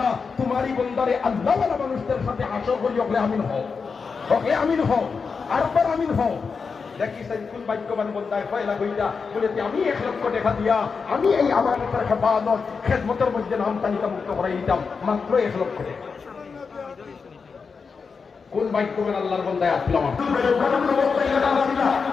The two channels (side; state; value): right; quieter; 5.2 dB